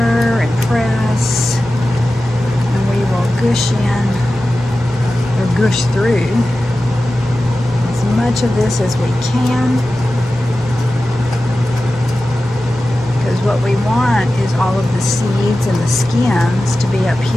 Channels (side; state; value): both; normal; correlation 0.94